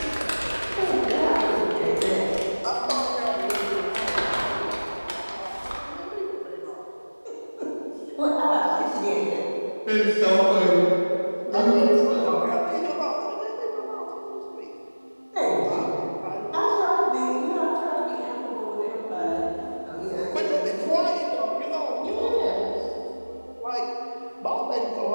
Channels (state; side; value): inverted; both; correlation -1.00